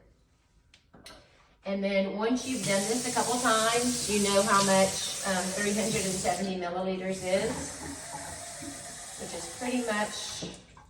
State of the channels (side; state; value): both; identical; correlation 1.00